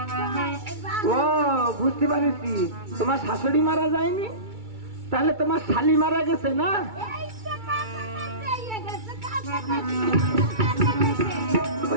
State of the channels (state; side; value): late; left; 2.3 ms